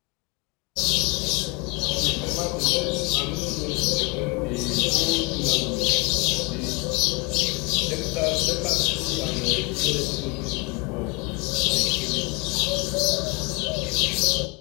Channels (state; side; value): quieter; right; 27.8 dB